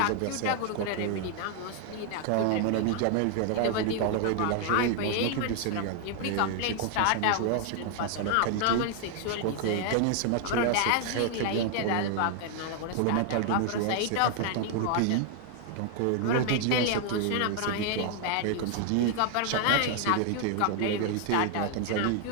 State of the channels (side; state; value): both; different; correlation 0.00